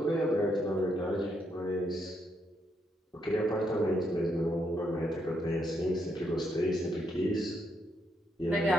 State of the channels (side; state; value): both; normal; correlation 0.77